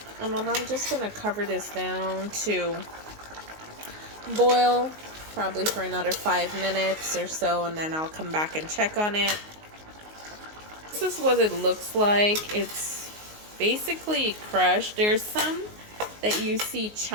And then I'm just going to cover this down to boil probably for another 5 minutes or so, and then I'll come back and check on it. This is what it looks like. It's basically crushed. There's some that you see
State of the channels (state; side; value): late; left; 19 ms